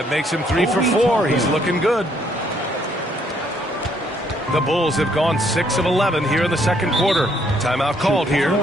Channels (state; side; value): normal; both; correlation 0.68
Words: makes him 3 for 4. He's looking good. The Bulls have gone 6 of 11 here in the second quarter. Timeout called here.